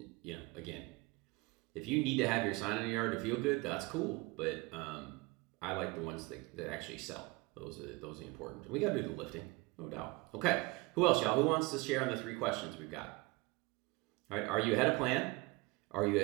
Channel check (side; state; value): left; quieter; 23.8 dB